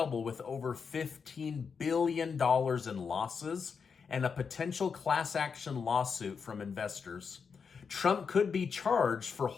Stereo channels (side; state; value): right; quieter; 5.9 dB